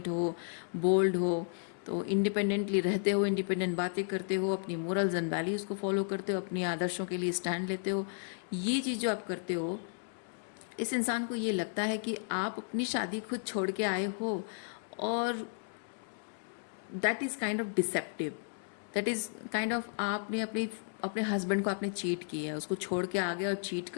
हो, बोल्ड हो, तो इंडिपेंडेंटली रहते हो, इंडिपेंडेंट बातें करते हो, अपनी मोरल्स एंड वैल्यूज़ को फॉलो करते हो, अपनी आदर्शों के लिए स्टैंड लेते हो, ये चीज़ जो आप करते हो, इस इंसान को ये लगता है कि आप अपनी शादी खुद छोड़ के आए हो, और that is kind of deceptive, that is kind of आपने अपने हस्बैंड को आपने चीट किया है, उसको छोड़ के आ गए और चीट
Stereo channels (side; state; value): right; silent; digital silence